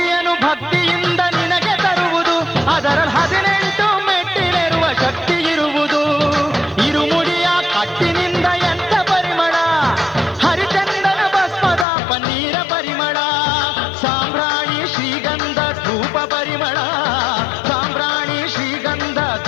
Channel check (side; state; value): right; drops out; at 11.9 s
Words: ಭಕ್ತಿಯಿಂದ ನಿನಗೆ ತರುವುದು ಅದರಲ್ಲಿ 18 ಮೆಟ್ಟಿಲಿರುವ ಶಕ್ತಿ ಇರುವುದು ಇರುಮುಡಿಯ ಕಟ್ಟಿನಿಂದ ಎಂಥ ಪರಿಮಳ ಹರಿಚಂದನ ಭಸ್ಮದ ಪನ್ನೀರ ಪರಿಮಳ ಸಾಂಬ್ರಾಣಿ ಶ್ರೀಗಂಧ ಧೂಪ ಪರಿಮಳ ಸಾಂಬ್ರಾಣಿ ಶ್ರೀಗಂಧ